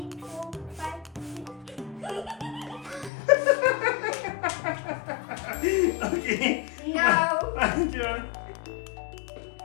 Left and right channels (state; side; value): drops out; right; at 3.1 s